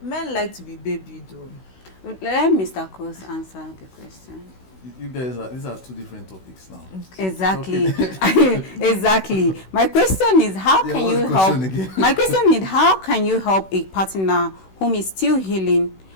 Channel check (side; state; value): right; late; 16 ms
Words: Men like to be babied, though. Let Mr. Cross answer the question. You guys these are two different topics now. Exactly. Exactly. My question is, how can you help? My question is, how can you help a partner whom is still healing?